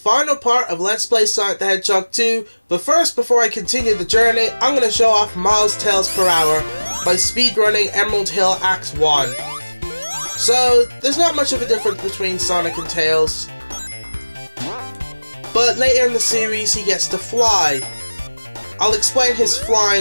part of Let's Play Sonic the Hedgehog 2. But first, before I continue the journey, I'm going to show off miles tails per hour by speedrunning Emerald Hill Act 1. So, there's not much of a difference between Sonic and Tails. But later in the series, he gets to fly. I'll explain his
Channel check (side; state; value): both; inverted; correlation -1.00